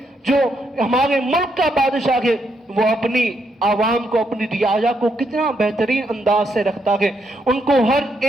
جو ہمارے ملک کا بادشاہ ہے, وہ اپنی عوام کو, اپنی رعایا کو کتنا بہترین انداز سے رکھتا ہے, ان کو ہر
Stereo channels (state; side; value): normal; both; correlation 0.77